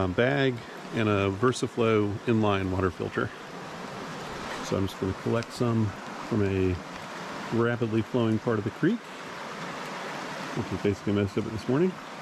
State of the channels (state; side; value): identical; both; correlation 1.00